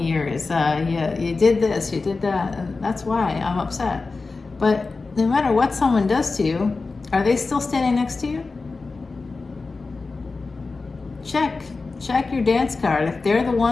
years. You did this, you did that, and that's why I'm upset. But no matter what someone does to you, are they still standing next to you? Check your dance card. If they're the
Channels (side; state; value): right; quieter; 4.0 dB